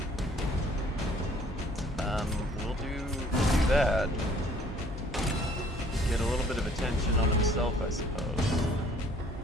We'll do that. Get a little bit of attention on himself, I suppose.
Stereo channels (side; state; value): both; normal; correlation 0.58